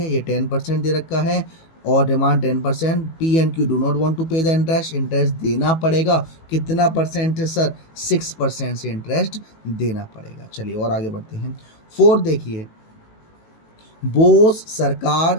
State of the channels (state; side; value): late; right; 18 ms